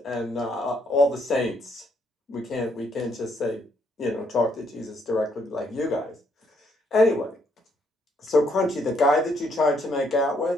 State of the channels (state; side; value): normal; both; correlation 0.71